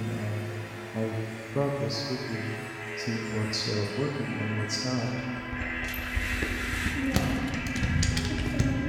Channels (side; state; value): both; identical; correlation 1.00